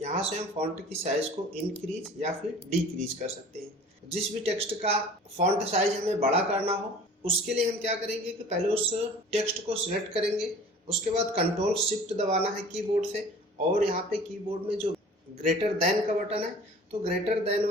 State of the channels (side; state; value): both; normal; correlation 0.45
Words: से हम फॉन्ट की साइज को इंक्रीज या फिर डिक्रीज कर सकते हैं। जिस भी टेक्स्ट का फॉन्ट साइज हमें बड़ा करना हो उसके लिए हम क्या करेंगे कि पहले उस टेक्स्ट को सिलेक्ट करेंगे, उसके बाद कंट्रोल शिफ्ट दबाना है कीबोर्ड से और यहाँ पे कीबोर्ड में जो ग्रेटर देन का बटन है तो ग्रेटर देन